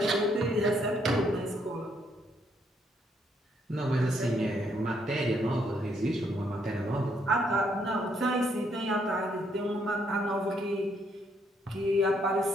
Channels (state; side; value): normal; both; correlation 0.72